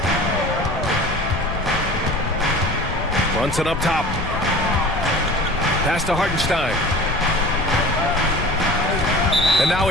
Brunson up top. Pass to Hartenstein. And now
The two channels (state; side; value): noise; left; rumble, 8 dB below the sound